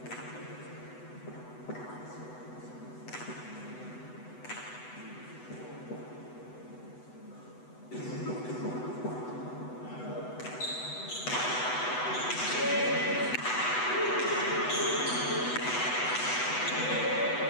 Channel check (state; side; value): late; right; 8.0 ms